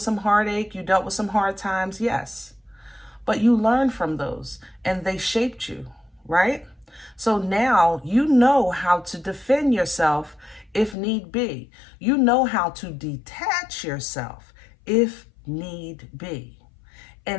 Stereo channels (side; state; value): right; drops out; at 11.0 s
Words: some heartache? You dealt with some hard times? Yes. But you learned from those and they shaped you, right? So now you know how to defend yourself if need be. You know how to detach yourself if need be.